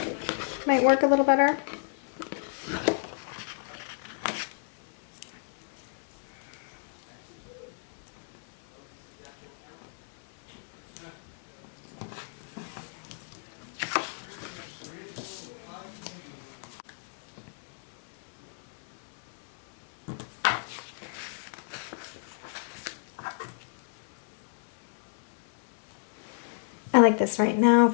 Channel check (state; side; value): silent; right; 57 dB below the other